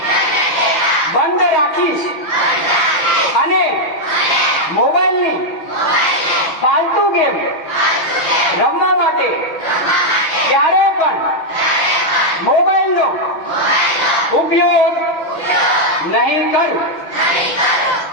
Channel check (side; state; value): right; late; 5.9 ms